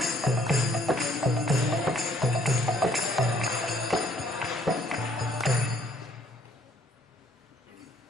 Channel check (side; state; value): both; normal; correlation 0.63